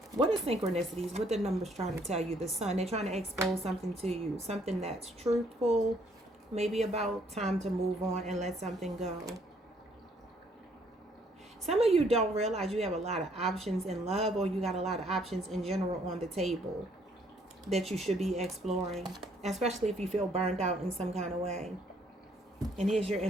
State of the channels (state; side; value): normal; both; correlation 0.66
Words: What are synchronicities? What the numbers trying to tell you? The sun, they're trying to expose something to you. Something that's truthful. Maybe about time to move on and let something go. Some of you don't realize you have a lot of options in love, or you got a lot of options in general on the table that you should be exploring, especially if you feel burned out in some kind of way. And here's your